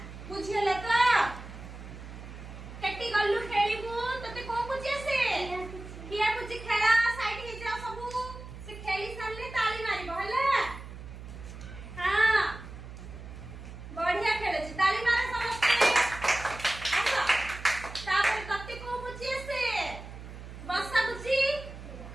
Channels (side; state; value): right; noise; hum, 13 dB below the sound